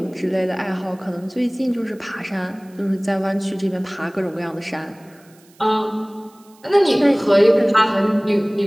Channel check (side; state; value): right; noise; hiss, 30 dB below the sound